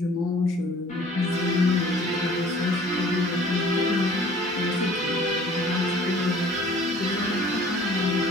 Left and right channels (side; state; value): both; normal; correlation 0.51